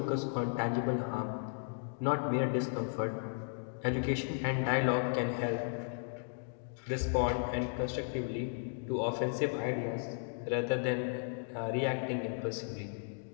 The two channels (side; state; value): right; silent; digital silence